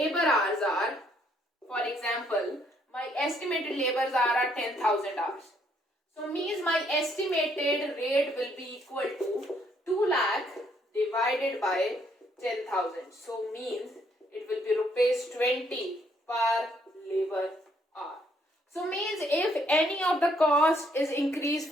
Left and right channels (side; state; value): both; normal; correlation 0.69